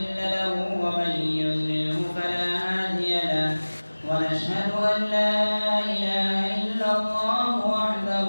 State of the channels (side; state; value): both; inverted; correlation -1.00